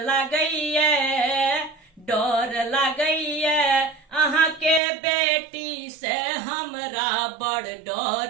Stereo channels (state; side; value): drops out; left; at 4.8 s